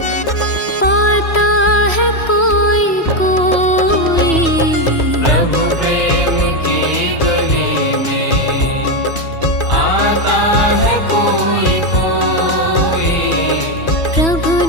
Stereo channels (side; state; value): right; late; 3.0 ms